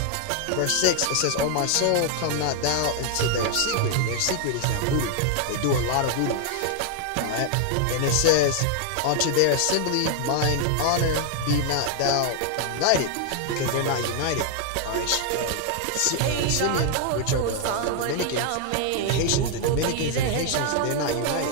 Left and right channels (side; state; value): both; different; correlation 0.00